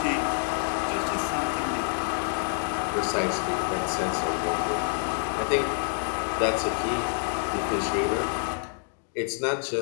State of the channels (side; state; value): right; silent; digital silence